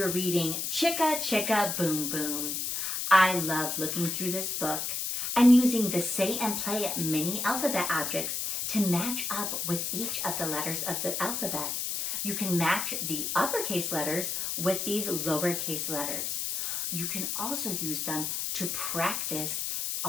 reading Chicka Chicka Boom Boom. I love looking through this book and using the Say and Play mini alphabet objects to match up with each of the letters of the alphabet. You can match the uppercase letters with these lowercase letters. You can also use them to practice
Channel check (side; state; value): left; noise; hiss, 1 dB below the sound